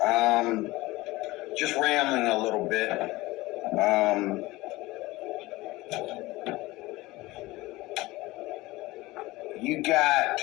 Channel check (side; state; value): right; quieter; 19.9 dB